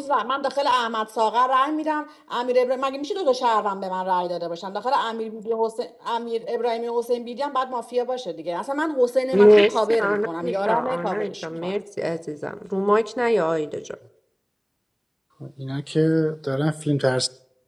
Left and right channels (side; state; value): both; identical; correlation 1.00